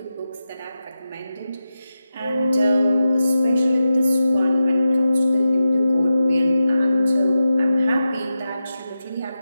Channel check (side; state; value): both; inverted; correlation -0.90